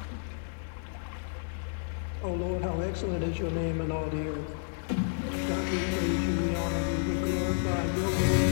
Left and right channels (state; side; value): silent; right; 57 dB below the other